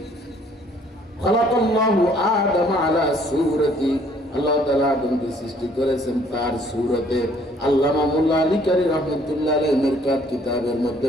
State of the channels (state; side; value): normal; both; correlation 0.61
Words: খালাকাল্লাহু আদাম আলা সূরাতি, আল্লাহ তাআলা আদমকে সৃষ্টি করেছেন তার সূরতে। আল্লামা মোল্লা আলী কারি রাহমাতুল্লাহ আলাইহি মিরকাত কিতাবের মধ্যে